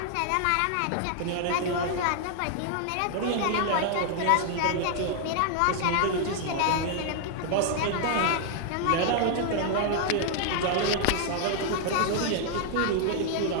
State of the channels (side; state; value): both; different; correlation 0.00